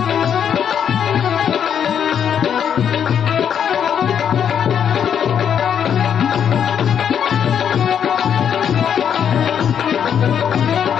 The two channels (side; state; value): right; quieter; 8.4 dB